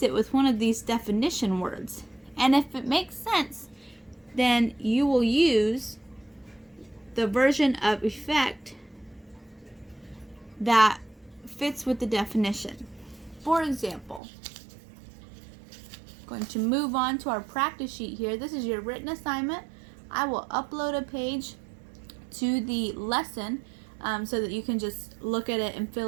it with one of these definition words. And if it makes sense, then you will use the version of effect that fits with the definition. For example, I'm going to move on to our practice sheet here. This is your written assignment. I will upload a page to the lesson so that you can just look at it and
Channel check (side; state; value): left; drops out; at 14.2 s